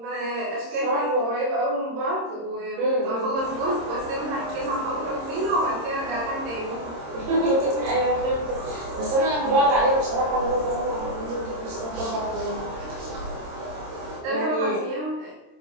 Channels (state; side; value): late; left; 26 ms